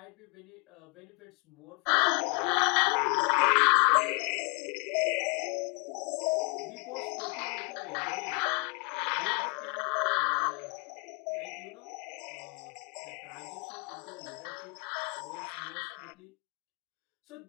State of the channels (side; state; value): right; quieter; 34.1 dB